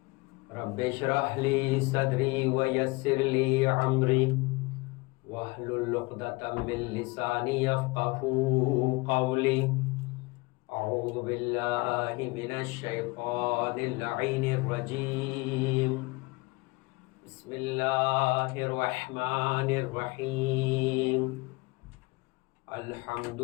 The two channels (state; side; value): quieter; right; 24.7 dB